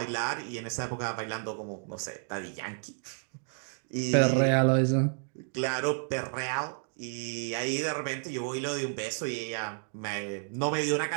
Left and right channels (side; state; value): left; silent; 55 dB below the other